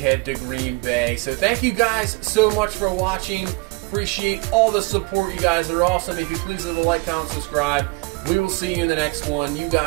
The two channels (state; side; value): quieter; left; 26.5 dB